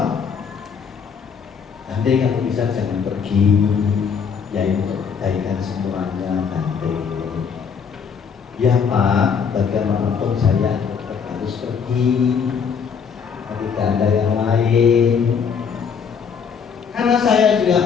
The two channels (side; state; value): right; quieter; 6.5 dB